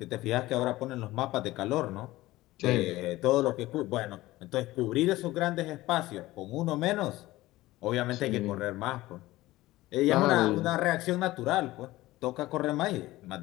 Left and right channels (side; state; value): right; quieter; 17.7 dB